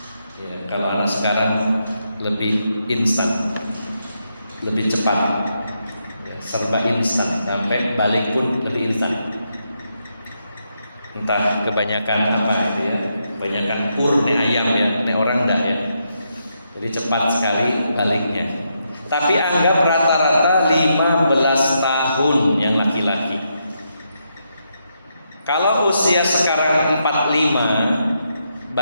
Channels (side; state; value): both; inverted; correlation -0.81